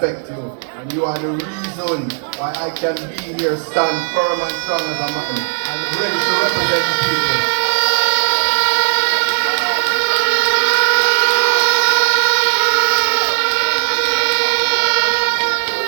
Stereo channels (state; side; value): silent; left; 68 dB below the other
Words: you. And you are the reason why I can be here, stand firm and strong as a man, and ready to represent the people.